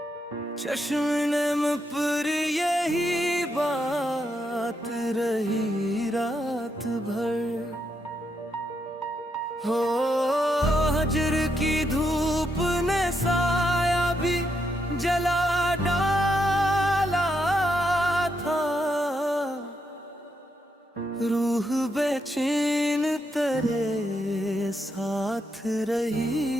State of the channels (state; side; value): normal; both; correlation 0.80